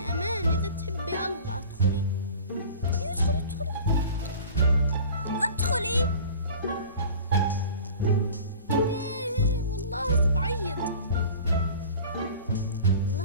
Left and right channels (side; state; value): both; inverted; correlation -0.41